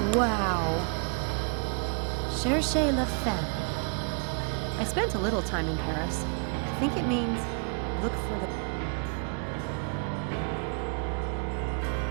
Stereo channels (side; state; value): left; quieter; 39.9 dB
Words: Wow. Cherchez la femme. I spent a little time in Paris. I think it means look for the...